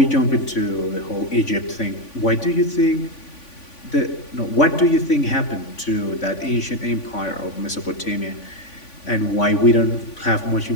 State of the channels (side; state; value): right; late; 3.5 ms